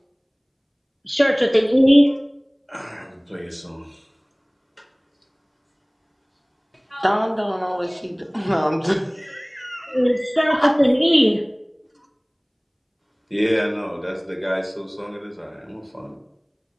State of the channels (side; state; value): both; identical; correlation 1.00